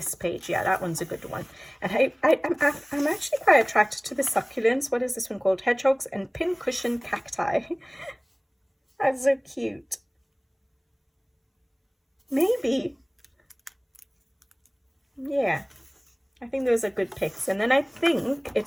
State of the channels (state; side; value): identical; both; correlation 1.00